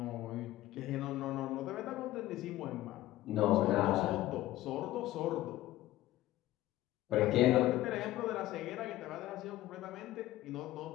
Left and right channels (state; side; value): quieter; right; 15.6 dB